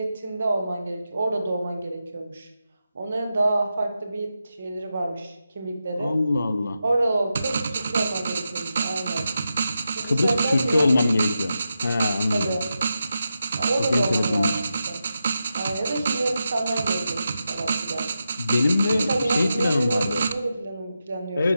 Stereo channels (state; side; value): inverted; both; correlation -0.88